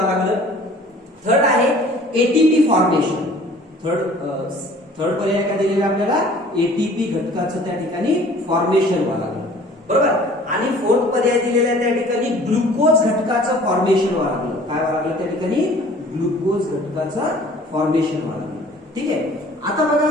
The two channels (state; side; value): normal; both; correlation 0.50